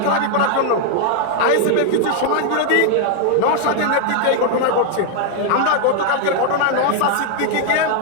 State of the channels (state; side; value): different; both; correlation 0.00